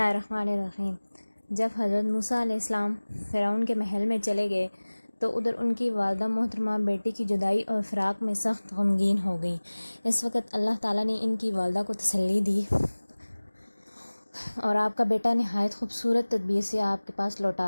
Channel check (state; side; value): inverted; both; correlation -1.00